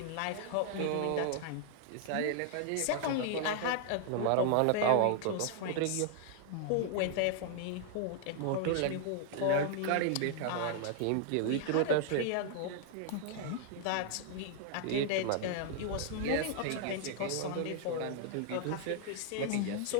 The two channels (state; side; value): different; both; correlation 0.00